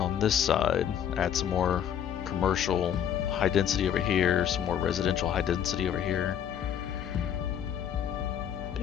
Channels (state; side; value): quieter; right; 9.3 dB